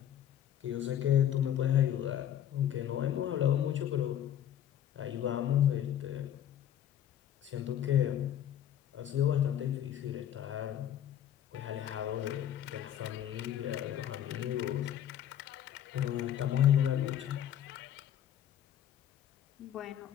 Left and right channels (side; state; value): right; quieter; 10.6 dB